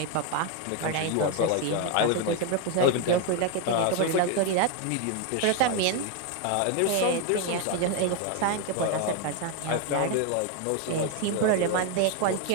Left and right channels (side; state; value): both; different; correlation 0.01